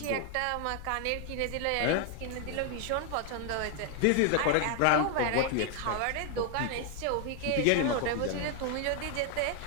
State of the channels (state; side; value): different; both; correlation 0.00